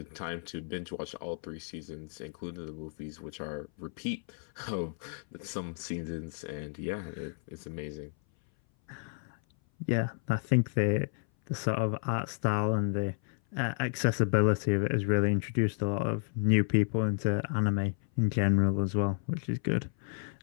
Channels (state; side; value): silent; right; 57 dB below the other